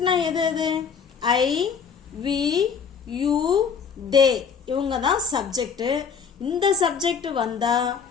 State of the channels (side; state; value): right; quieter; 6.4 dB